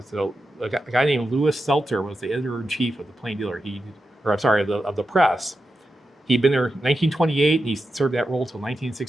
guy named Louis Seltzer was the editor-in-chief of the Plain Dealer. Of the Press. He'd been there in 1928, and he served that role until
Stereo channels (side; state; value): both; normal; correlation 0.89